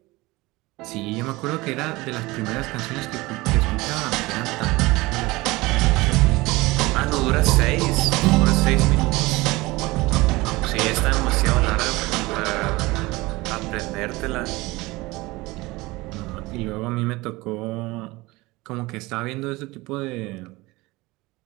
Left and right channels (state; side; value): quieter; left; 21.5 dB